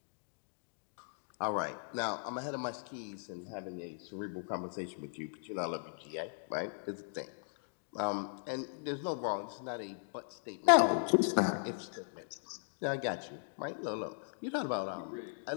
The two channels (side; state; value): right; silent; digital silence